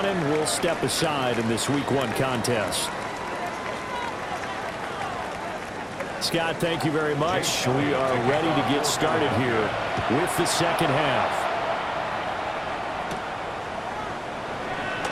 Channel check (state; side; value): identical; both; correlation 1.00